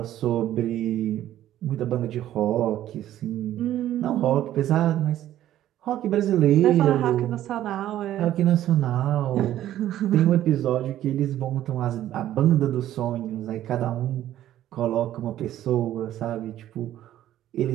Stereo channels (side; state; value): left; quieter; 12.7 dB